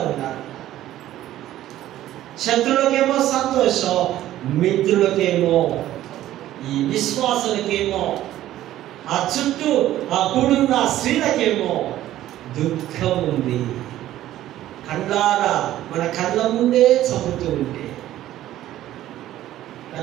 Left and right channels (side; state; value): left; quieter; 13.6 dB